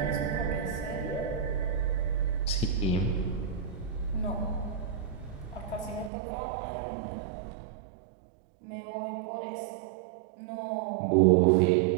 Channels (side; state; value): left; drops out; at 6.1 s